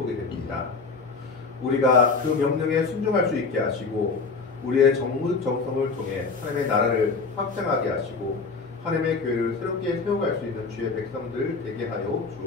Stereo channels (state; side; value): quieter; right; 4.4 dB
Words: 됩니다. 우리가 그 명령에 순종할 수 있게 하시고 우리의 정성을 통해 하나님의 나라를 확장하게 하시고 하나님의 교회를 새롭게 세워갈 수 있는 주의 백성들 되게 하여